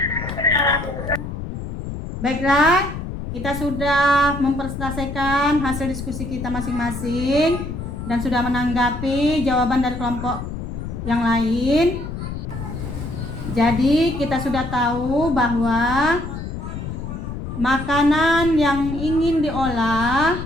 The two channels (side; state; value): left; noise; rumble, 7 dB below the sound